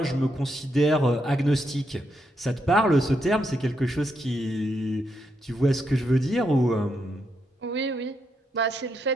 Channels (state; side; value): normal; both; correlation 0.80